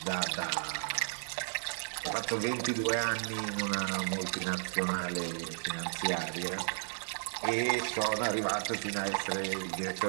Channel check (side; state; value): left; silent; digital silence